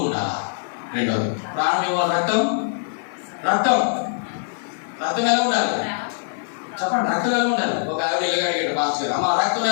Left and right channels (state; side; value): silent; right; digital silence